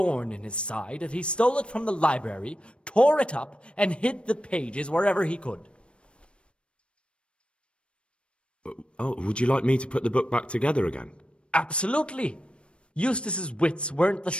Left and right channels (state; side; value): late; right; 0.058 ms